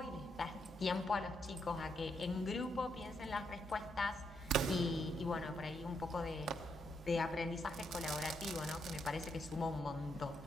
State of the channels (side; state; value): both; normal; correlation 0.78